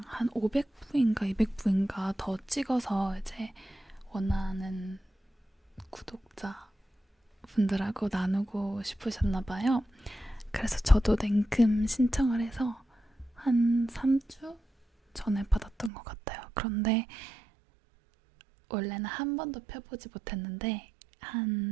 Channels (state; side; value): drops out; left; at 15.9 s